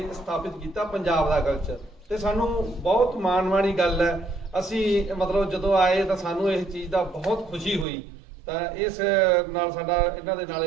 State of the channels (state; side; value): drops out; left; at 7.9 s